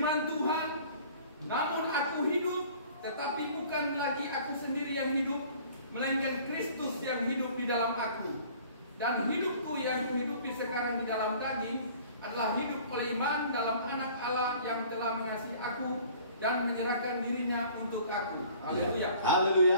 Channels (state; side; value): inverted; both; correlation -0.50